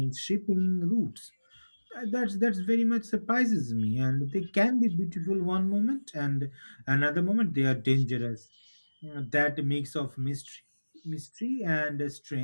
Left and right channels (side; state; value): both; inverted; correlation -1.00